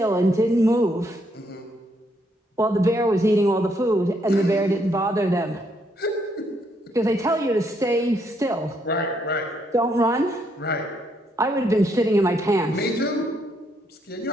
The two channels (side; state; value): both; normal; correlation 0.73